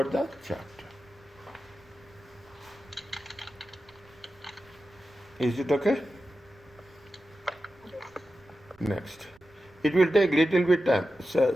the chapter. Is it okay? yes, Next. It will take little bit time. So,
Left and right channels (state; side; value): noise; right; rumble, 28 dB below the sound